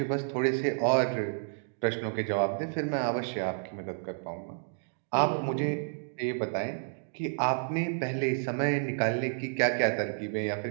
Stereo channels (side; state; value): left; silent; digital silence